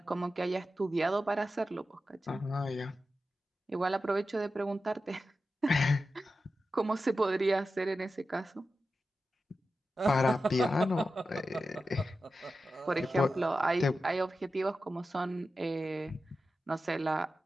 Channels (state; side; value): normal; both; correlation 0.92